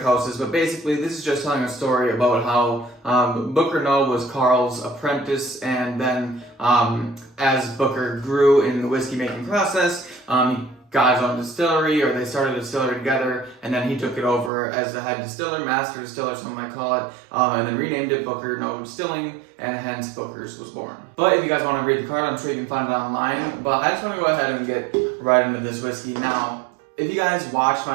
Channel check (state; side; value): drops out; left; at 14.5 s